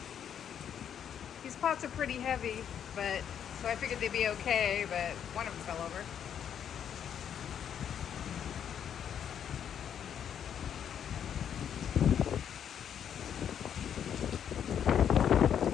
These pots are pretty heavy, but so I figured they'd be okay, but one of them fell over.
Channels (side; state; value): right; quieter; 8.8 dB